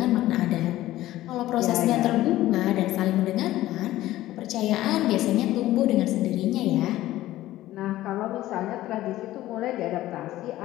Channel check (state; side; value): quieter; right; 15.3 dB